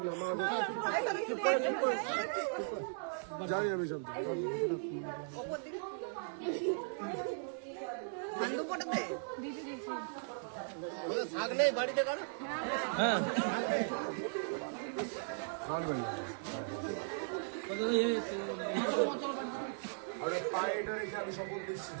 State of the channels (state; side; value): silent; left; digital silence